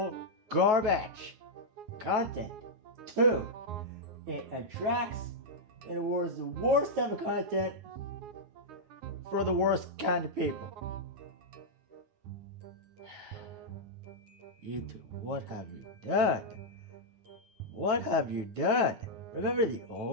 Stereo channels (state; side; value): late; left; 9.5 ms